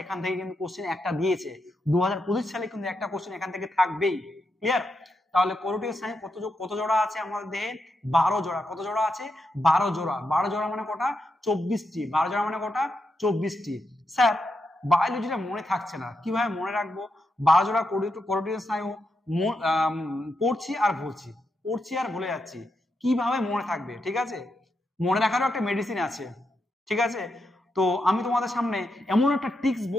এখান থেকে কিন্তু কোশ্চেন একটা দিয়েছে, 2025 সালে কিন্তু একটা কোশ্চেন এখান থেকে থাকবেই। ক্লিয়ার? তাহলে করোটিয় স্নায়ু কত জোড়া আছে আমাদের দেহে? 12 জোড়া। কত জোড়া আছে? 12 জোড়া। 12 জোড়া মানে কটা? 24টি। 12 জোড়া মানে কটা? 24টি। স্যার বায়োলজিটা মনে থাকছে না, কিভাবে মনে রাখবো? 12 জোড়া করোটিয় স্নায়ু পড়ছি আর ভুলে যাচ্ছি, কিভাবে মনে থাকবে? ঠিক আছে, মনে রাখারও একটা মেডিসিন আছে। ঠিক আছে, তো আমি তোমাদের সামনে এমন একটা ট্রিক্স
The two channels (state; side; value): normal; both; correlation 0.84